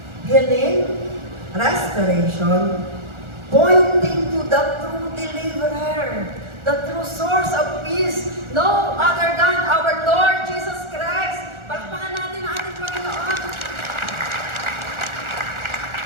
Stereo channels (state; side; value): late; left; 1.4 ms